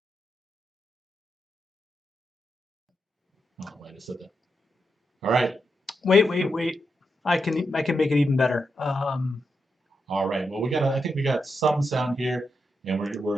Oh, wait, I said that. All right. Wait. I can make it even better. All right. Well, I think we got some sound here, and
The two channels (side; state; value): both; normal; correlation 0.85